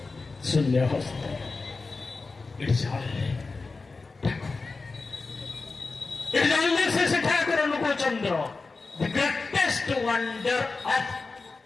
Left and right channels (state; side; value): quieter; right; 4.0 dB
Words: ଶୂନ୍ୟ ହସ୍ତ। ଜାଣିଲେ ସେ ଠାକୁର Anukulchandra, the greatest wonder of